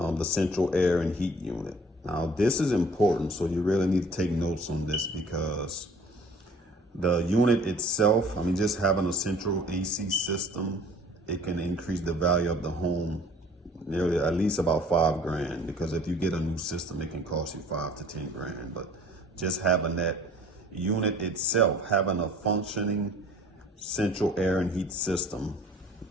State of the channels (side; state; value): both; normal; correlation 0.51